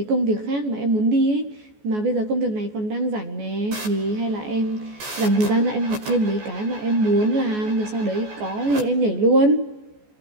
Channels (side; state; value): left; late; 14 ms